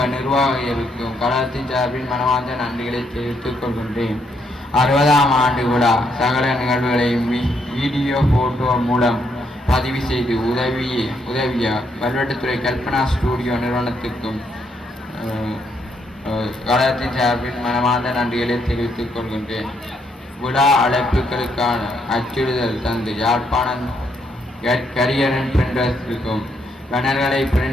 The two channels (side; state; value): both; normal; correlation 0.75